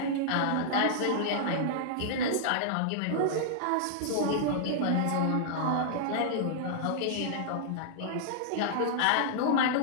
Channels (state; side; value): different; both; correlation -0.01